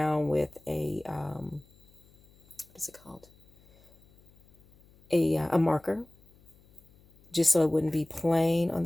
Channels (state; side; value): noise; left; hum, 28 dB below the sound